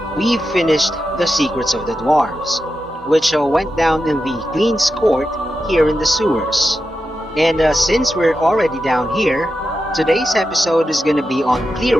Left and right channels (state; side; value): normal; both; correlation 0.89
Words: we finished the Secrets of the Dwarves, which went down in the Queen's Court here in the sewers. And since we're already down here, today's episode is gonna be on